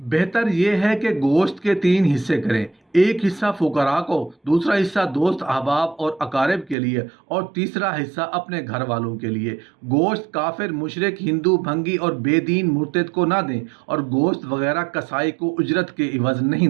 यह है कि गोश्त के 3 हिस्से करें, एक हिस्सा फुकरा को, दूसरा हिस्सा दोस्त अहबाब और अकारिब के लिए और तीसरा हिस्सा अपने घर वालों के लिए। गोश्त काफिर, मुशरिक, हिंदू, भंगी और बेदीन मुर्तद को ना दें और गोश्त वगैरह कसाई को उजरत के इवज़ नहीं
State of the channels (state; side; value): drops out; left; at 6.8 s